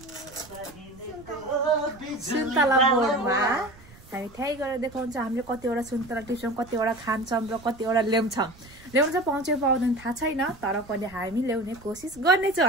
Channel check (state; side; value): noise; right; rumble, 22 dB below the sound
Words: सुन्तला बोर्डमा हामी त्यही गएर देखाउँछ हामीले कतिवटा सुन्तला टिप्छौं, कतिवटा खान्छौं र कतिवटा ल्याउँछौं। ल्याउन चाहिँ पाउँछ पाउँदैन थाहा छैन, तर पनि हामी ल्याउने कोसिस गर्ने छौं